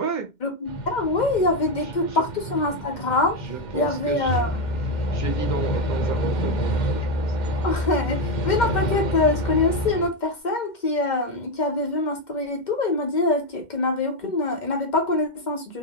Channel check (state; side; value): late; right; 2.1 ms